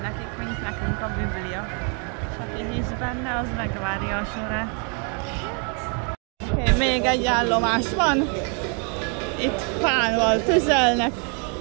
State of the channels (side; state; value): left; quieter; 38.1 dB